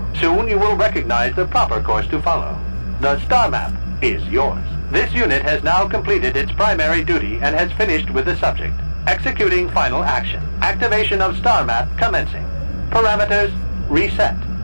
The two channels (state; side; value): inverted; both; correlation -1.00